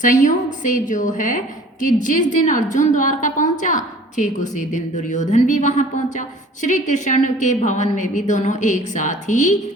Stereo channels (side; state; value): both; normal; correlation 0.49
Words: से जो है कि जिस दिन अर्जुन द्वारका पहुंचा ठीक उसी दिन दुर्योधन भी वहां पहुंचा। श्री कृष्ण के भवन में भी दोनों एक साथ ही